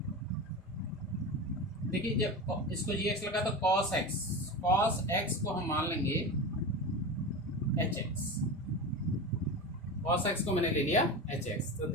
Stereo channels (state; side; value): normal; both; correlation 0.26